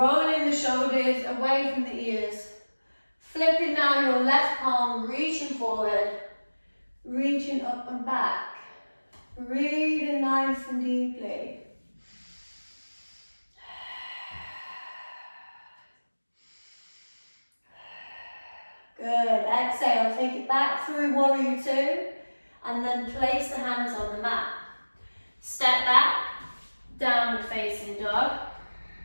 the shoulders away from the ears. Flipping now your left palm, reaching forward, reaching up and back. Breathing nice and deeply. Good, exhale, take it back through warrior two. And then place the hands on the mat. Step back, downward facing dog.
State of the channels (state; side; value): inverted; both; correlation -1.00